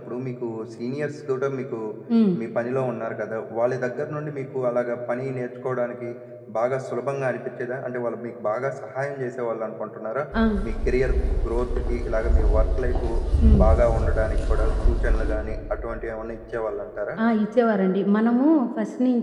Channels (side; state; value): both; identical; correlation 1.00